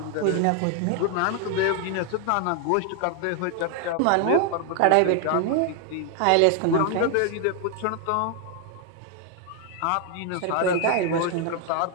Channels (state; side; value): different; both; correlation 0.00